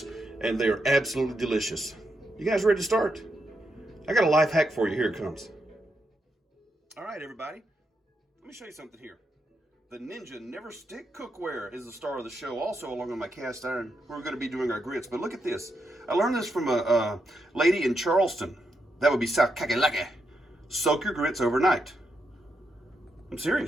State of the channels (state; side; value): normal; both; correlation 0.83